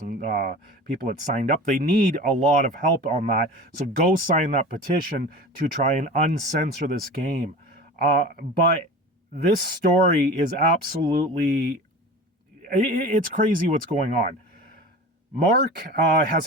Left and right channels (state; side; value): normal; both; correlation 0.35